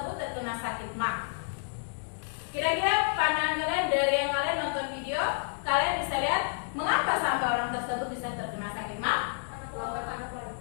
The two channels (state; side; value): silent; right; digital silence